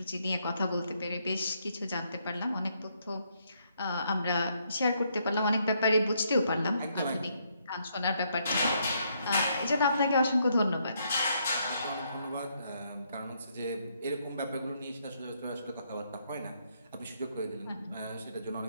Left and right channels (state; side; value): inverted; both; correlation -0.73